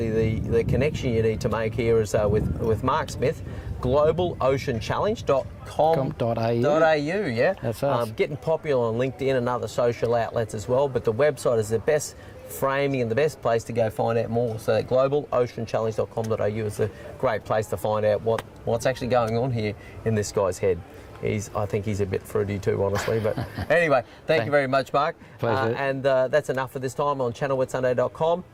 the connection you need to make here is with Mark Smith, globaloceanchallenge.com.au, yeah? That's us. Getting popular on LinkedIn and other social outlets as well, but the website is the best framing and the best place to go find out more. So globaloceanchallenge.com.au is a great place to find out what's actually going on here in this guy's head. I think he's a bit fruity too, honestly. But anyway, thank you very much, Mark. Pleasure. And that's enough for this time on channelwithsunday.com.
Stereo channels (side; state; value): both; identical; correlation 1.00